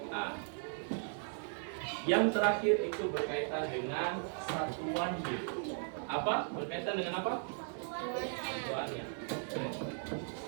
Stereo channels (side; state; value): left; silent; 53 dB below the other